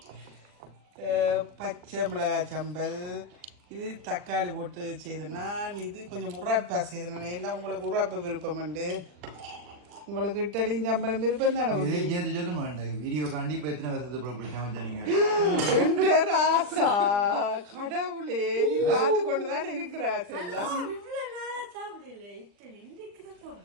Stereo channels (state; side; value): late; left; 40 ms